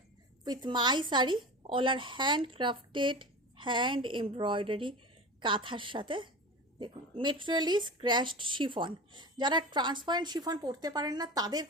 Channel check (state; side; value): normal; both; correlation 0.31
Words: with my sari. All are handcrafted, hand embroidery কাঁথার সাথে। দেখুন, মেটেরিয়াল ইজ ক্র্যাশড শিফন। যারা ট্রান্সপারেন্ট শিফন পরতে পারেন না তাদের